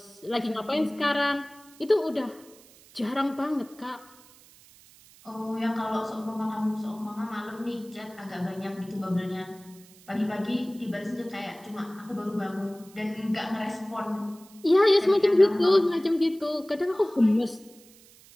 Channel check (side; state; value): right; noise; hiss, 25 dB below the sound